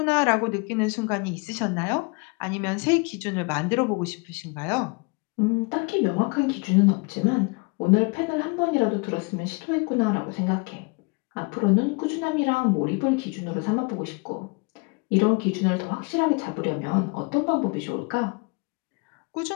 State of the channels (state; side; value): quieter; right; 31.1 dB